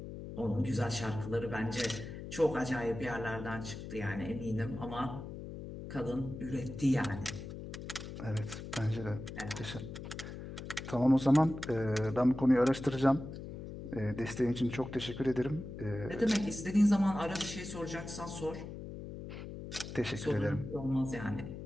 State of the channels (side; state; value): left; noise; hum, 9 dB below the sound